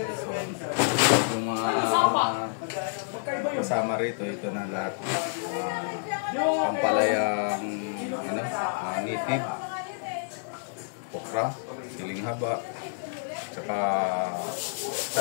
So yung mga kasama rito, ito na lahat. Pampalayang native, okra, siling haba, tsaka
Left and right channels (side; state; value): right; silent; 59 dB below the other